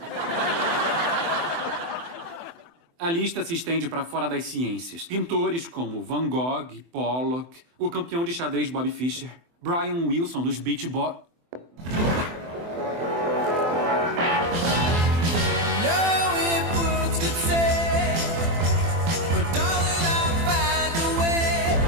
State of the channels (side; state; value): left; late; 24 ms